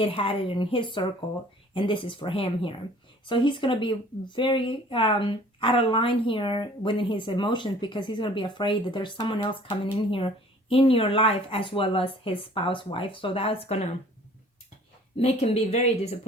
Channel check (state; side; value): normal; both; correlation 0.52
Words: had it in his circle, and this is for him here. So he's going to be very out of line here within his emotions, because he's going to be afraid that there's someone else coming in here in your life as well as his spouse wife. So that's going to make him be very